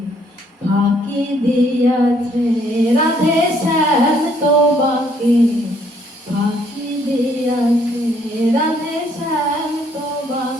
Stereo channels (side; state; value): both; normal; correlation 0.66